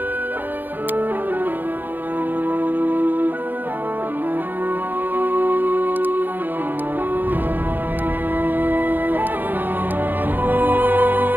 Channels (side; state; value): left; late; 0.089 ms